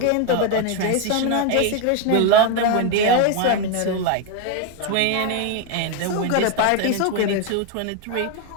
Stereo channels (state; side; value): different; both; correlation 0.01